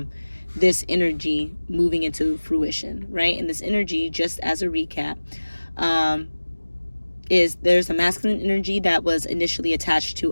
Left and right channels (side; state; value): both; inverted; correlation -1.00